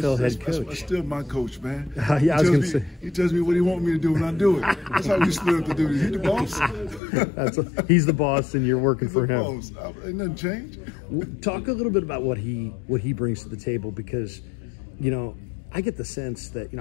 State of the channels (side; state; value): right; drops out; at 7.0 s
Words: head coach. That's still my coach, man. Yeah, I was going to say. He tells me what he wants me to do, and I do it. That's how we split up the duties. He's the boss. He's the boss, and you're working for him. Boss. Ain't nothing changed. Talk a little bit about what he brings to the table, because, you know, I get the sense that, you